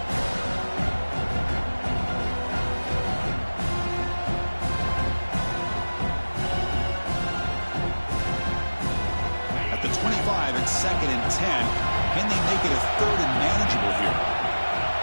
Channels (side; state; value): both; inverted; correlation -1.00